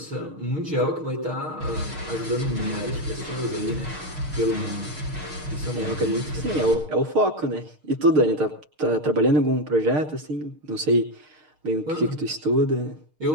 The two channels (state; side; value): late; left; 6.5 ms